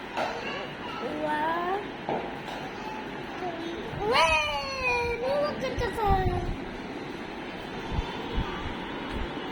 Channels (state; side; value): identical; both; correlation 1.00